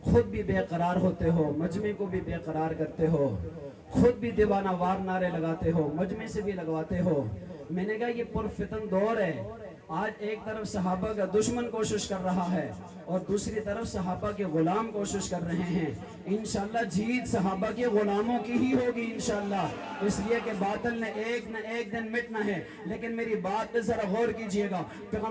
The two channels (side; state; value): both; identical; correlation 1.00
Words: خود بھی بے قرار ہوتے ہو، مجمع کو بھی بے قرار کرتے ہو، خود بھی دیوانہ وار نعرے لگاتے ہو، مجمع سے بھی لگواتے ہو۔ میں نے کہا یہ پرفتن دور ہے۔ آج ایک طرف صحابہ کا دشمن کوشش کر رہا ہے اور دوسری طرف صحابہ کے غلام کوشش کر رہے ہیں۔ انشاءاللہ جیت صحابہ کے غلاموں کی ہی ہوگی انشاءاللہ، اس لیے کہ باطل نے ایک نہ ایک دن مٹنا ہے۔ لیکن میری بات پہ ذرا غور کیجئے گا،